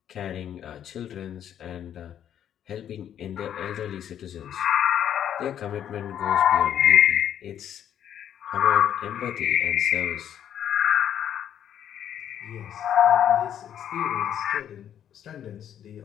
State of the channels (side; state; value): right; quieter; 9.9 dB